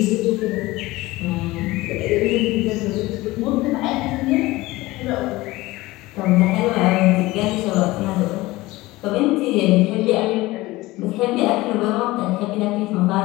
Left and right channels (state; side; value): quieter; right; 19.5 dB